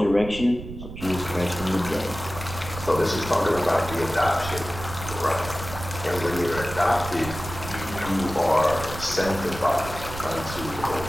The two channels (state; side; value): noise; right; rumble, 11 dB below the sound